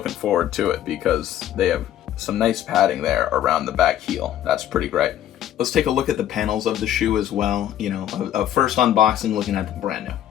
forward to it because they have some nice padding there around the back heel. That's pretty great. Let's take a look at the panels of the shoe as well. You know, a first unboxing looking at the brand new.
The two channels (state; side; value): quieter; right; 11.5 dB